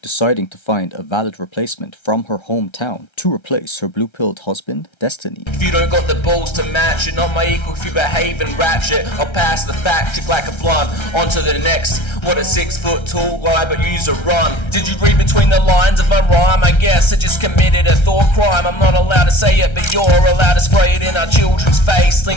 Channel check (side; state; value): right; late; 1.3 ms